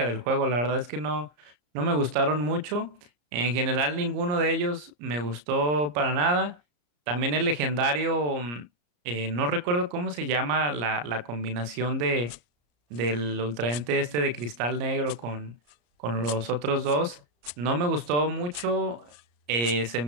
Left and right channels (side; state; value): left; late; 34 ms